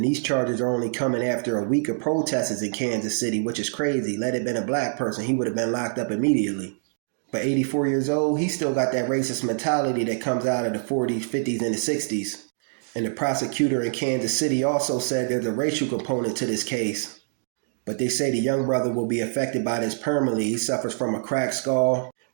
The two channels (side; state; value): left; silent; digital silence